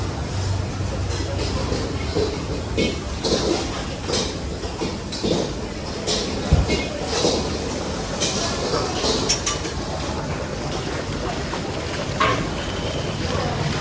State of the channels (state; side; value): identical; both; correlation 1.00